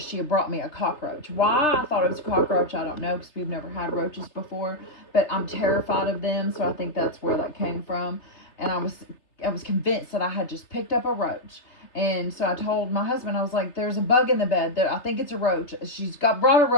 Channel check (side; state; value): right; late; 3.3 ms